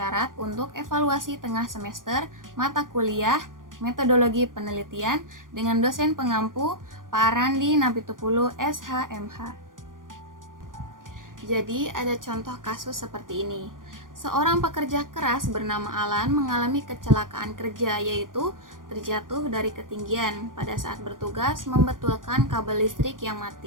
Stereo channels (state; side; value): late; left; 0.90 ms